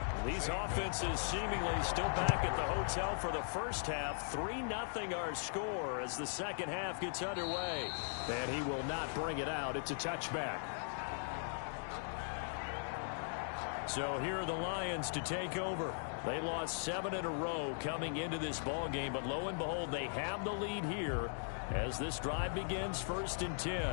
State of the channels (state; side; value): silent; right; digital silence